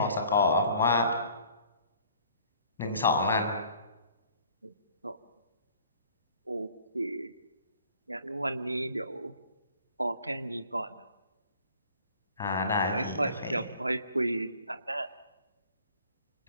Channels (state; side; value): inverted; both; correlation -0.54